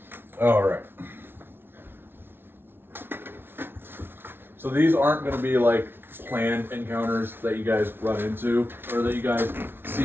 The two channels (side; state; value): left; late; 0.11 ms